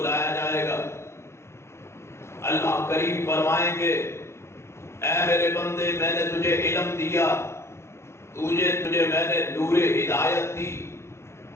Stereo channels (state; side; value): late; right; 0.13 ms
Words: جائے گا. اللہ کریم فرمائیں گے اے میرے بندے، میں نے تجھے علم دیا، تجھے میں نے نور ہدایت دی،